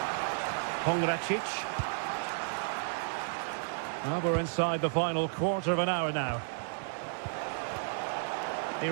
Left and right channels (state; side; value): silent; left; digital silence